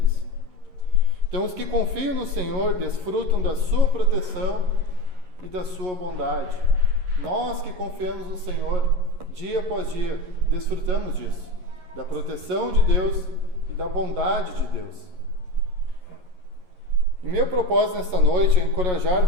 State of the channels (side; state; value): left; late; 11 ms